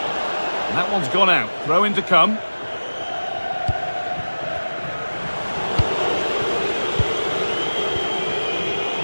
And that one's gone out. Throw in to come.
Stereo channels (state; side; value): inverted; both; correlation -1.00